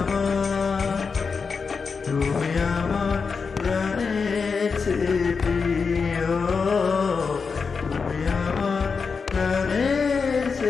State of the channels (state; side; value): quieter; right; 5.2 dB